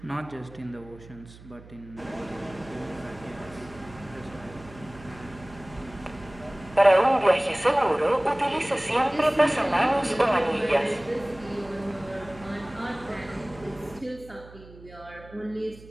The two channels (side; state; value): right; noise; hum, 20 dB below the sound